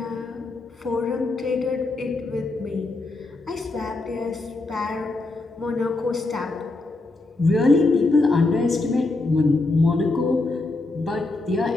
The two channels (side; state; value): right; quieter; 3.2 dB